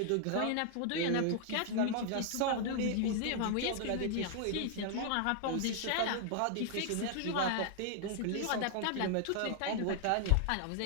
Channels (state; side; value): different; both; correlation 0.00